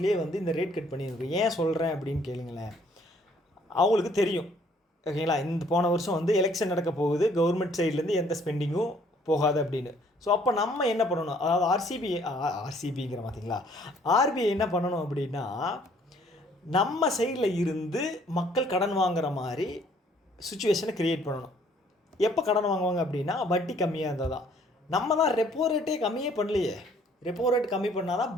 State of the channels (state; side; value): normal; both; correlation 0.61